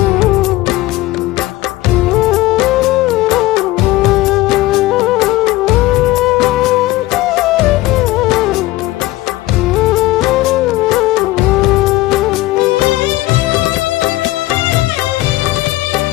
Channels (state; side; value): quieter; right; 17.8 dB